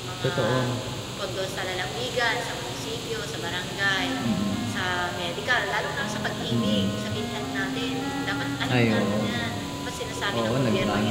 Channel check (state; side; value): identical; both; correlation 1.00